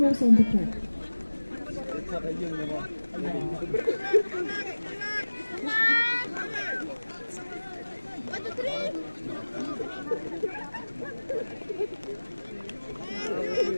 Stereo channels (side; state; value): both; inverted; correlation -1.00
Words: on the track.